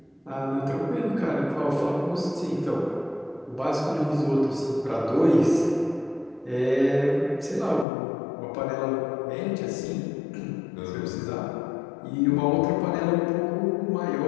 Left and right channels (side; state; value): right; drops out; at 7.9 s